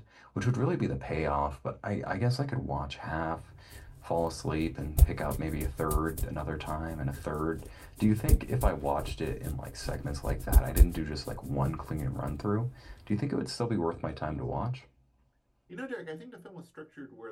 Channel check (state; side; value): identical; both; correlation 1.00